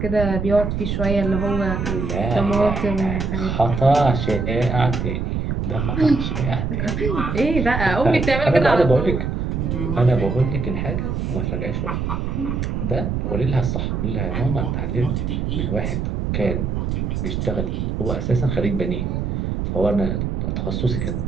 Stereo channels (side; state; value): right; noise; rumble, 1 dB below the sound